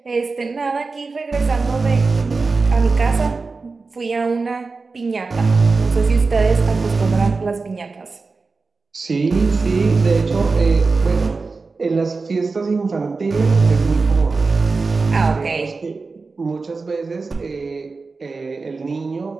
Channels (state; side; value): quieter; left; 4.1 dB